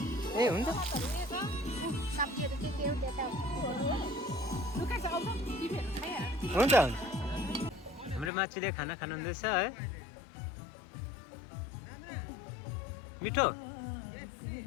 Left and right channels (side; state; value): right; drops out; at 8.3 s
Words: ए हुन्छ सब्जीहरू के हो त्यो त लुका छ आउँछ टिभीहरू खाइहाल्छ। हुन्छ हाम्रो माछीले खाना खानुहुँदैछ है। मिठो